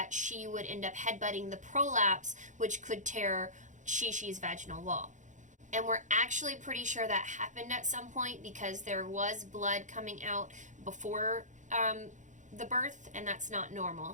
she would end up headbutting the prolapse, which could tear Shi-Shi's vaginal wall. And we're actually pretty sure that happened at some point because there was blood coming out before the birth, and that's not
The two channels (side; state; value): left; late; 0.36 ms